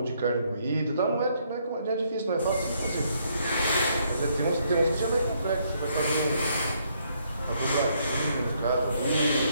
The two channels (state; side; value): inverted; both; correlation -0.71